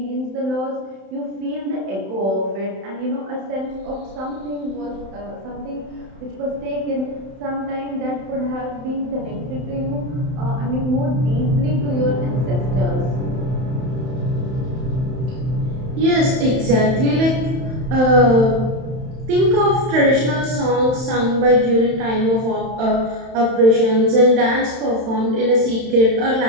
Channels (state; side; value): late; left; 31 ms